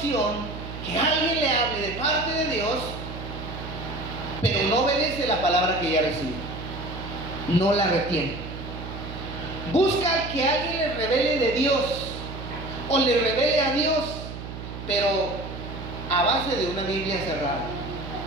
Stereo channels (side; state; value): right; noise; hum, 9 dB below the sound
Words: que alguien le hable de parte de Dios, pero no obedece la palabra que ya recibe, no la retiene. Busca que alguien le revele de Dios o le revele a Dios, pero a base de una Biblia cerrada,